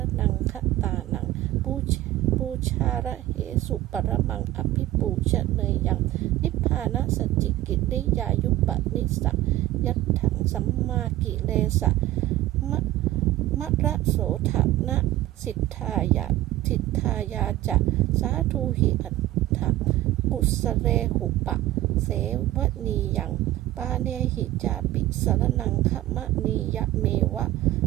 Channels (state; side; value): quieter; left; 15.5 dB